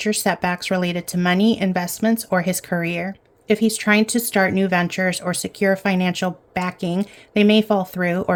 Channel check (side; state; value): both; identical; correlation 1.00